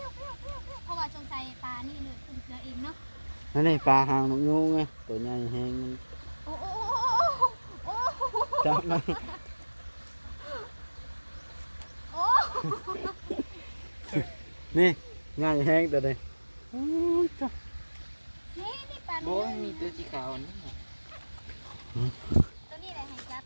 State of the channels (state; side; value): inverted; both; correlation -1.00